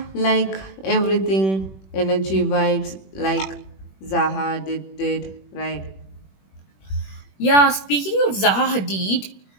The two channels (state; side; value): late; right; 21 ms